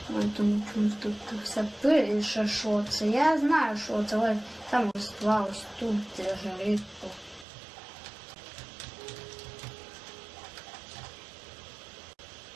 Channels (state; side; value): drops out; left; at 7.5 s